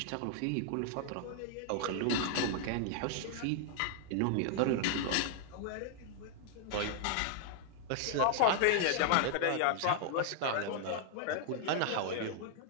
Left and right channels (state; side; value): different; both; correlation -0.01